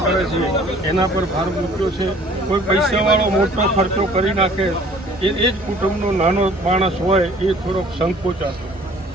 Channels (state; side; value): normal; both; correlation 0.53